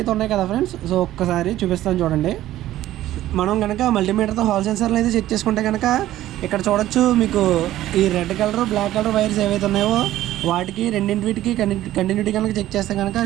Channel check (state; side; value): quieter; left; 14.1 dB